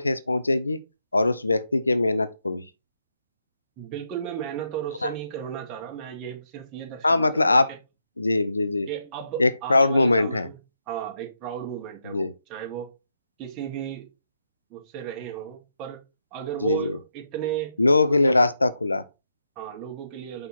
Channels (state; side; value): inverted; both; correlation -0.83